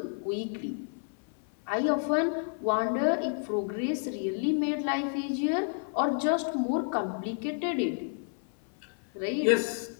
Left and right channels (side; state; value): right; silent; 56 dB below the other